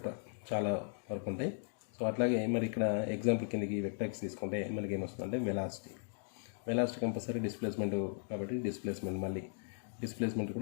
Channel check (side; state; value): right; silent; digital silence